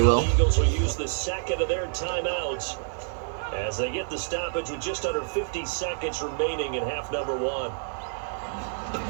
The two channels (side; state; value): left; silent; digital silence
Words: will. Eagles will use the second of their timeouts as they get the stoppage with just under 50 seconds remaining in half number one.